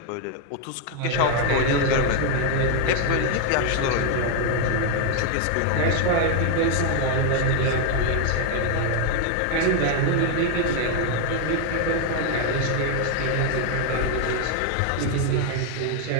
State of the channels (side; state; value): both; different; correlation 0.01